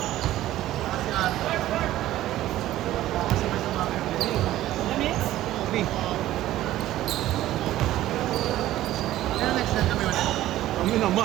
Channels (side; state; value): left; quieter; 14.4 dB